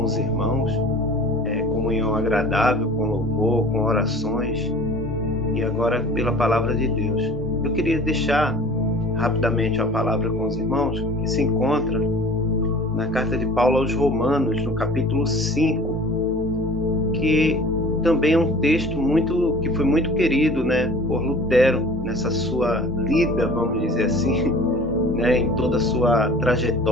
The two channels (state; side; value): normal; both; correlation 0.44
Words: os irmãos, comunhão agradável, com louvor, com orações, e agora pela palavra de Deus. Eu queria deixar rapidamente a palavra com os irmãos, que se encontra na carta de Paulo aos Romanos, no capítulo 5, que também é um texto que foi muito querido, né, por Lutero, nessa sua lida, vamos dizer assim, né, em toda a sua